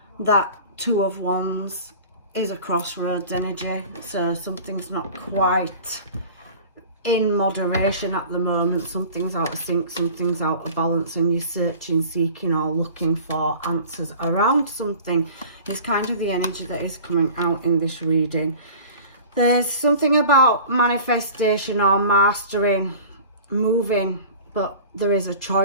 that Two of Wands is a crossroads energy. So something's not quite in moderation at the moment. Something's out of sync, something's out of balance, and you're searching, seeking or looking for answers around something. It's kind of the energy that is coming out in this reading. There's something about manifestation or mastering, moving, but there is a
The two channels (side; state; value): both; inverted; correlation -0.42